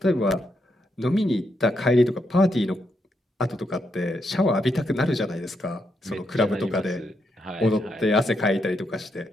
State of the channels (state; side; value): normal; both; correlation 0.80